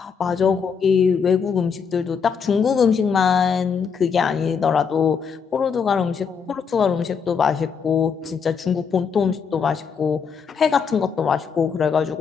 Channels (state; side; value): quieter; right; 6.3 dB